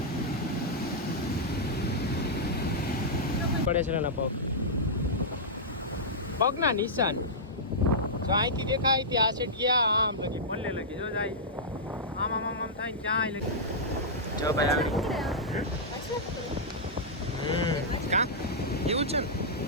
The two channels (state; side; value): normal; both; correlation -0.10